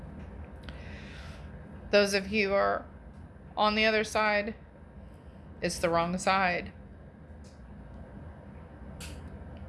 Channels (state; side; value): identical; both; correlation 1.00